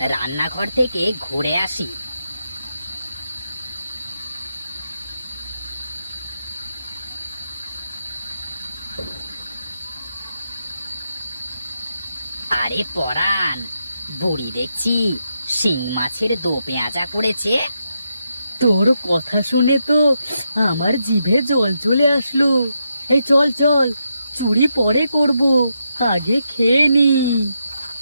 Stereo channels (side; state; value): both; inverted; correlation -0.83